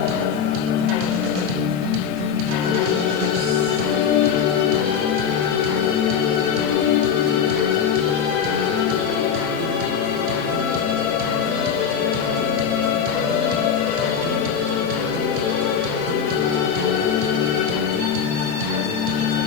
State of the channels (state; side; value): quieter; right; 7.2 dB